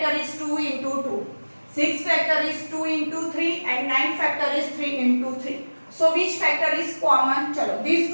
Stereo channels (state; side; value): inverted; both; correlation -1.00